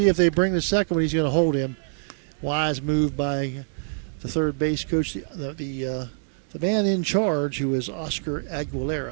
if they bring the second one. He's going to hold him. Wise move by the third base coach, the man in charge, who is Oscar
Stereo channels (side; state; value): left; silent; digital silence